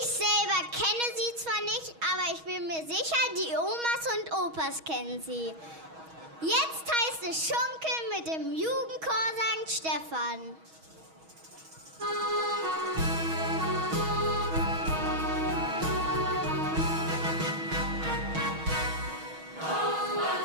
selber kenne sie zwar nicht, aber ich bin mir sicher, die Omas und Opas kennen sie. Jetzt heißt es Schunkeln mit dem Jugendchor St. Stephan.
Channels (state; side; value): late; left; 6.3 ms